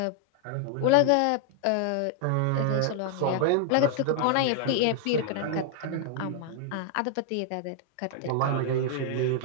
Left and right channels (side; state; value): both; different; correlation 0.00